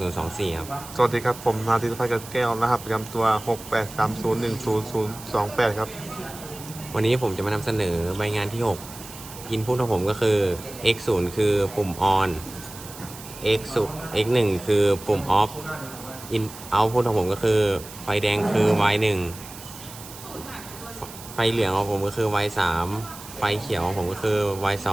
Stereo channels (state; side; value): noise; right; hiss, 15 dB below the sound